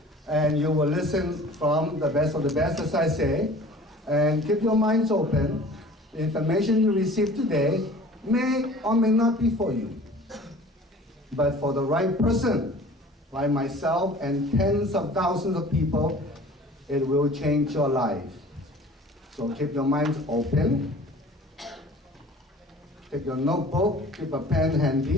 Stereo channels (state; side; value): normal; both; correlation 0.46